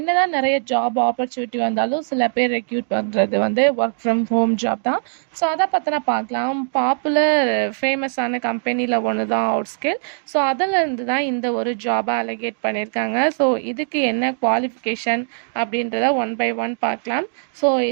நிறைய ஜாப் ஆப்பர்ச்சுனிட்டி வந்தாலும் சில பேர் ரெக்யூட் பண்ணுறது வந்து ஒர்க் ஃப்ரம் ஹோம் ஜாப் தான். ஸோ அதை பற்றின பார்க்கலாம். பாப்புலர் ஃபேமஸான கம்பெனியில் ஒன்று தான் அவுட்ஸ்கில். ஸோ அதிலிருந்து தான் இந்த ஒரு ஜாபை அலகேட் பண்ணியிருக்காங்க. ஸோ இதுக்கு என்ன குவாலிஃபிகேஷன் அப்படின்றத ஒன் பை ஒன் பார்க்கலாம். ஸோ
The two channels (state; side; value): silent; left; digital silence